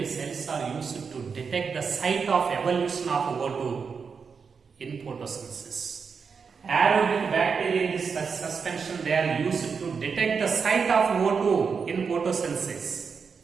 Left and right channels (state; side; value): quieter; left; 5.7 dB